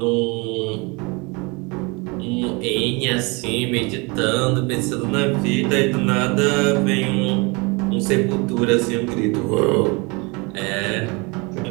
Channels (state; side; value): quieter; left; 28.4 dB